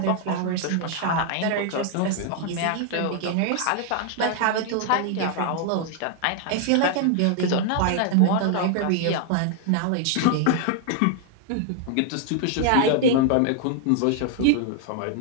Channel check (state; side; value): different; both; correlation 0.00